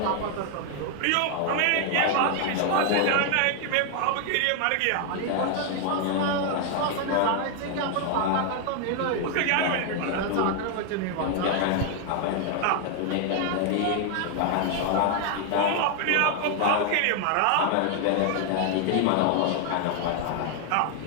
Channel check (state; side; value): different; both; correlation 0.00